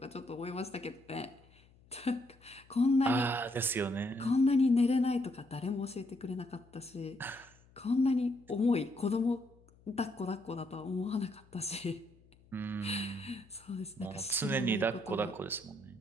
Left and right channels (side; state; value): left; noise; hum, 28 dB below the sound